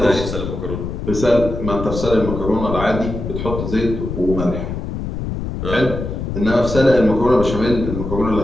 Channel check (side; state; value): left; noise; rumble, 5 dB below the sound